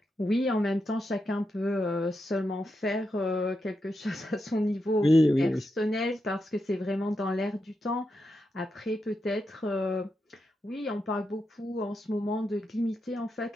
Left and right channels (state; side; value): normal; both; correlation 0.86